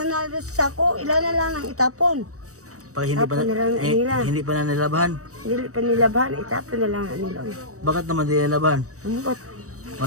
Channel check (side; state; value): left; late; 0.65 ms